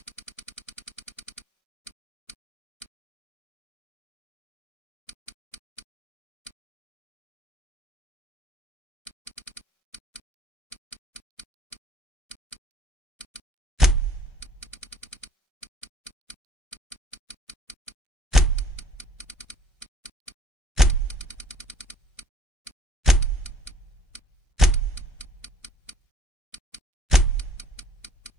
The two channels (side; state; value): both; normal; correlation 0.59